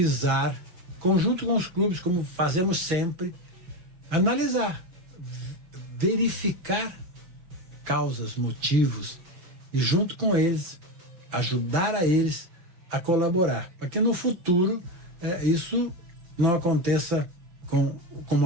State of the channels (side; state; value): left; late; 5.9 ms